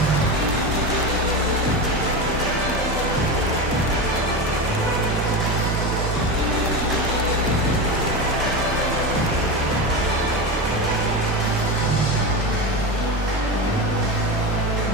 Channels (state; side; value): normal; both; correlation 0.20